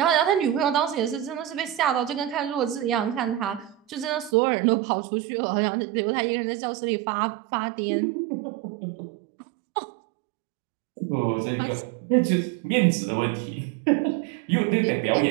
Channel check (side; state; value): left; drops out; at 4.3 s